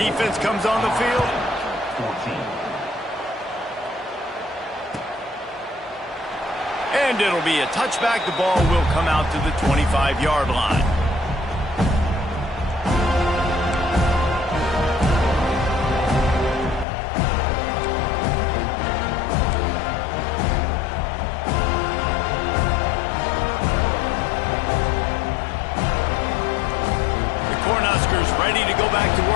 comes on the field? And it'll be a touchback. The ball will come out to the 25-yard line. The Cornhuskers ready to go back to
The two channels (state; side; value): drops out; right; at 16.9 s